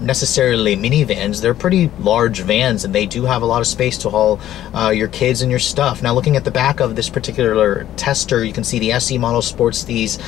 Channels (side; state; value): right; quieter; 12.6 dB